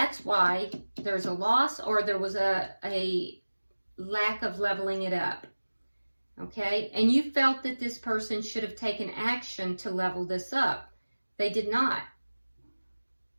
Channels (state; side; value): inverted; both; correlation -1.00